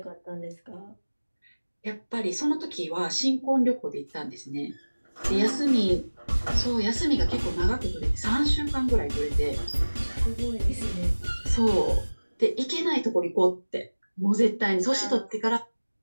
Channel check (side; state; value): both; inverted; correlation -1.00